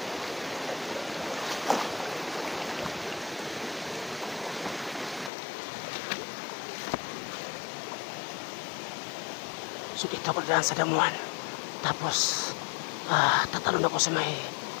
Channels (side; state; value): right; drops out; at 5.3 s